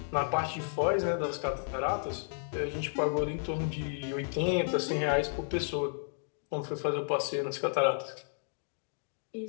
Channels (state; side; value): silent; right; digital silence